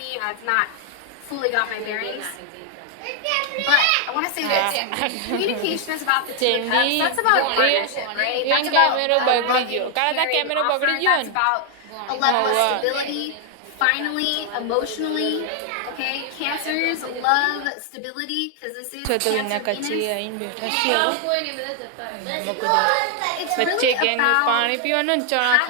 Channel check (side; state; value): both; different; correlation 0.00